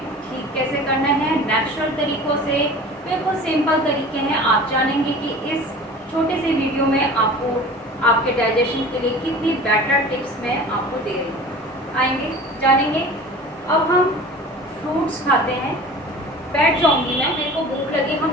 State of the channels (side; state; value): both; normal; correlation 0.40